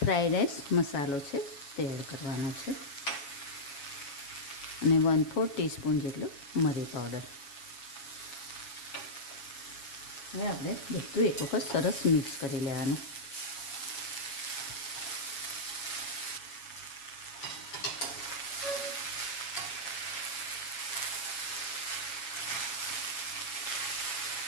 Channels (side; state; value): right; late; 7.2 ms